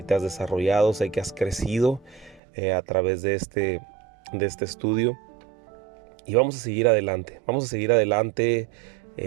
te has desarrollado, sé que has crecido a través de este estudio. Y vamos a seguir adelante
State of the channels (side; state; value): left; drops out; at 2.4 s